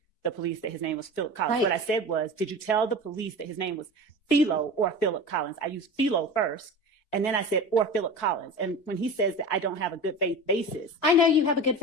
the police that his name was Philip Collins. Right. What I said was, did you tell the police that his name was Philo or Philip Collins? I used Philo first, and then I said, or Philip Collins. And when he says that I don't have a good faith basis. I know you have a good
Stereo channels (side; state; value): right; late; 4.6 ms